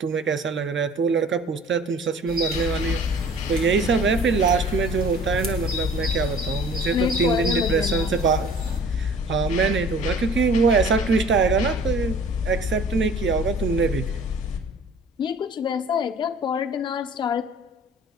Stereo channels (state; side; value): normal; both; correlation 0.48